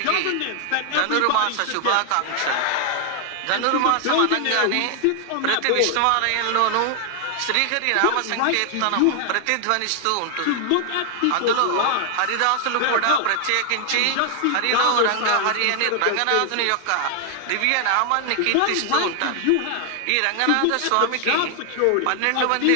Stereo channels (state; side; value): different; both; correlation 0.00